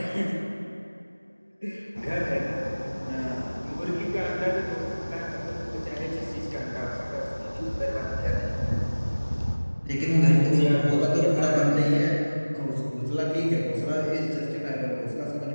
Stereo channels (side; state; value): both; inverted; correlation -1.00